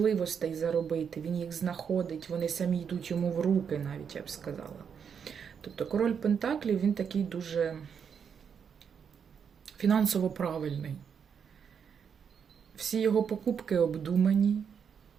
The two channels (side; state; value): left; quieter; 7.1 dB